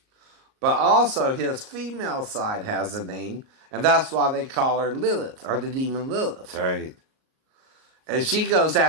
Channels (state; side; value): late; left; 38 ms